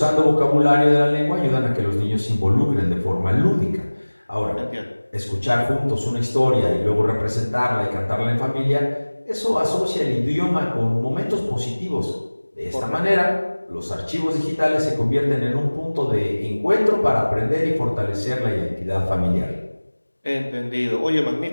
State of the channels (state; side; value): inverted; both; correlation -1.00